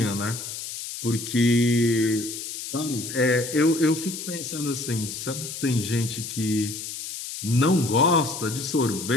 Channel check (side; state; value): left; noise; hiss, 8 dB below the sound